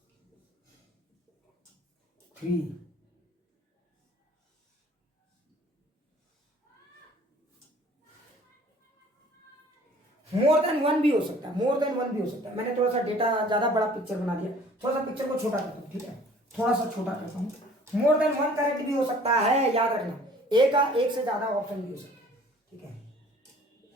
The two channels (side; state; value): both; normal; correlation 0.52